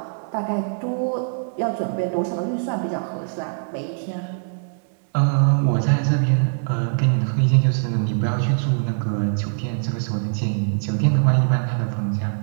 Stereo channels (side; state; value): left; silent; digital silence